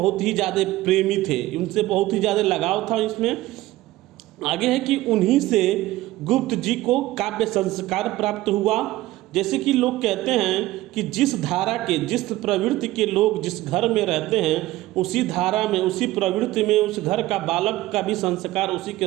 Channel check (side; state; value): left; quieter; 16.9 dB